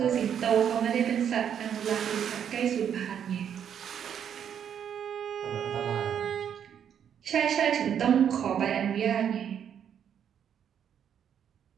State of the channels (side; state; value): left; quieter; 8.7 dB